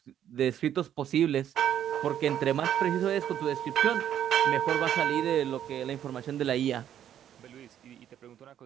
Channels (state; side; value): quieter; left; 10.3 dB